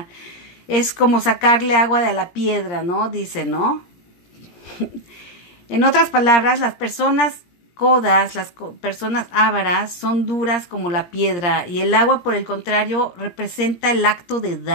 Es como sacarle agua de la piedra, ¿no? Dice, ¿no? En otras palabras, las personas codas, las personas ávaras, son duras como la piedra y el agua, por el contrario, representa el acto de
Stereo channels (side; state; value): right; late; 17 ms